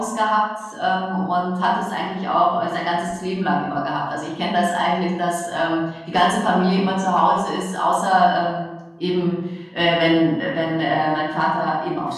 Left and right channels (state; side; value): identical; both; correlation 1.00